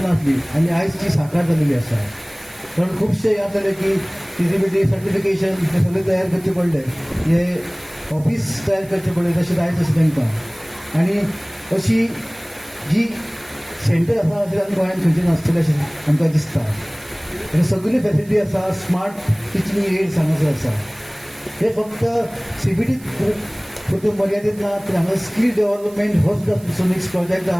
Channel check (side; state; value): right; noise; hiss, 24 dB below the sound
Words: असली आणि आज ती साकार झालेली असा. कारण खूपशे याद झाले की फिजिबिलिटी सर्टिफिकेशन हे सगळे तयार करचे पडले, हे ऑफिस तयार करचे पडले तसे जायचं असं तांकां. आणि अशी जी सेंटर आसा अशें आमी गोंयांत खंयचे नासतले अशें आमकां दिसता. आनी सगळी फॅसिलिटी आसा. स्मार्ट टिचींग एड्स हांगासर आसा. हे फक्त CBT पुरते मर्यादित ना, तर हांगा स्कील डेव्हलपमेंट हो सुद्दां नेक्स्ट प्रोजेक्ट